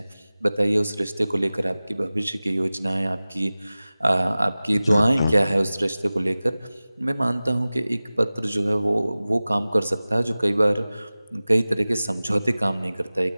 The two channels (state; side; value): inverted; both; correlation -0.98